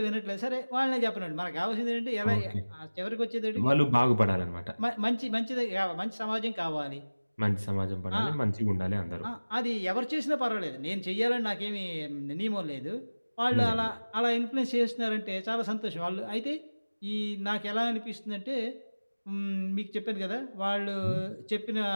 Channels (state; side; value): inverted; both; correlation -1.00